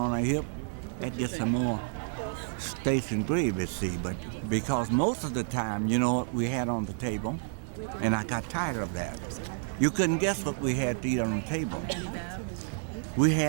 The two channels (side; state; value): left; silent; 58 dB below the other